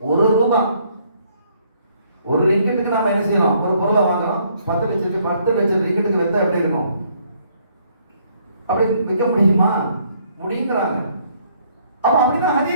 ₹1 ஒரு ரிங்கெட்டுக்கு நாம என்ன செய்யலாம்? ஒரு பொருளை வாங்குறோம், 10 லட்சம் ரிங்கெட்டுக்கு வித்தா எப்படி இருக்கும்? அப்படி விற்க முடியுமா? முடியுங்கிறாங்க. அப்ப அப்படிதான்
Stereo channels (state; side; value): inverted; both; correlation -0.66